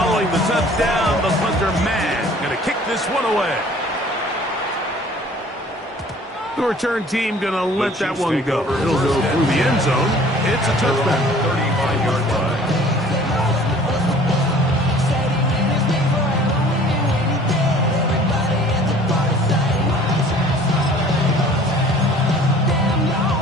the touchdown, the punter man going to kick this one away. The return team going to let that one go. It'll go through the end zone. It's a touchback. 35-yard line.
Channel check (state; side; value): normal; both; correlation 0.51